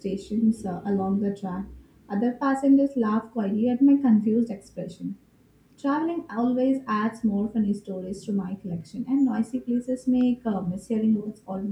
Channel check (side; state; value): both; identical; correlation 1.00